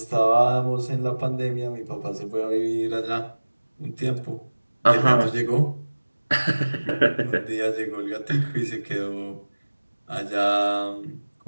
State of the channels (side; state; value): both; inverted; correlation -1.00